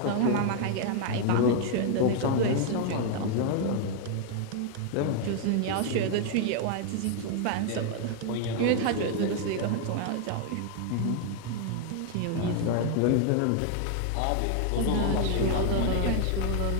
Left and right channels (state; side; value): different; both; correlation 0.00